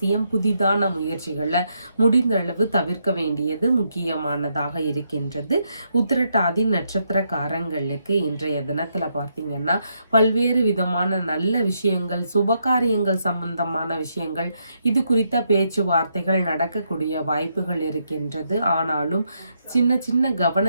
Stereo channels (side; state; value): both; inverted; correlation -0.78